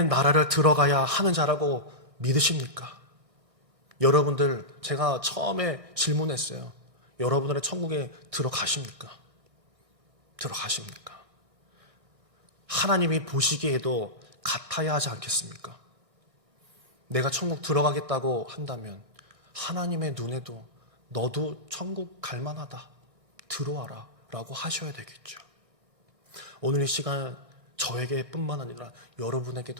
나라를 들어가야 하는 자라고 믿으십니까? 여러분들, 제가 처음에 질문했어요. 여러분들의 천국에 들어가십니까? 들어가십니까? 하나님이 보시기에도 같아야 하지 않겠습니까? 내가 천국 들어가겠다고 한다면 하나님의 눈에도 너도 천국 갈 만하다, 들어와라 라고 하셔야 되겠죠. 오늘 이 시간 저에게 뿐만 아니라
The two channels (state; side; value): late; left; 1.8 ms